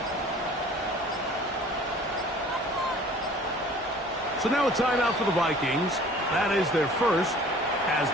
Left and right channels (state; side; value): normal; both; correlation 0.49